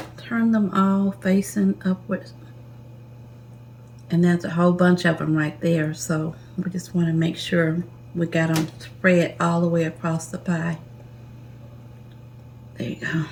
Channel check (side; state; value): both; identical; correlation 1.00